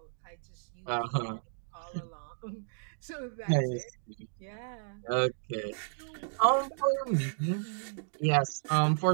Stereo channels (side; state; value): left; silent; digital silence